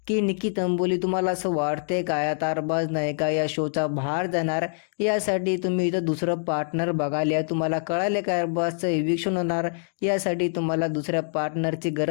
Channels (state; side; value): silent; right; digital silence